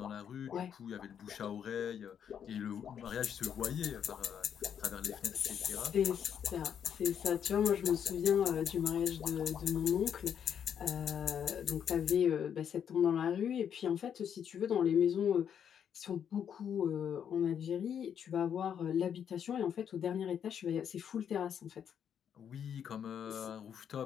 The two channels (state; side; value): quieter; right; 8.4 dB